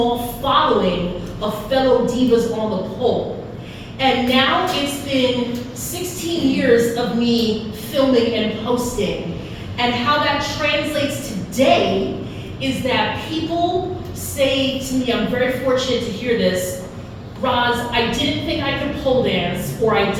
following of fellow divas on the pole. And now it's been 16 years of me filming and posting. And how that translates today is that people say to me, I'm very fortunate to hear this, Roz, I didn't think I could pole dance, or I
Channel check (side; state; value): both; identical; correlation 1.00